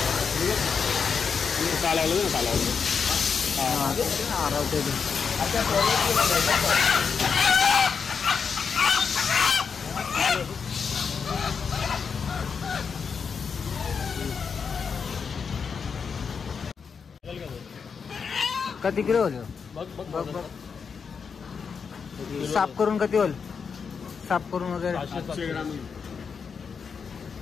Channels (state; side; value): quieter; right; 6.0 dB